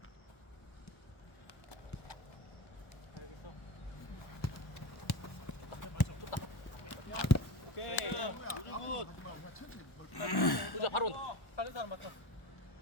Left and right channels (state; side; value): late; right; 1.1 ms